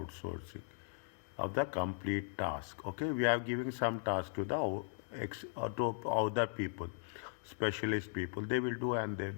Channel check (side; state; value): right; silent; digital silence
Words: of the complete task. Okay, we are giving some task to the to other people, specialist people. They will do, and